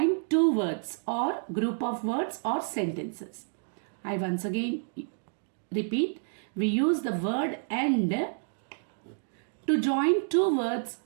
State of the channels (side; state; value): left; silent; digital silence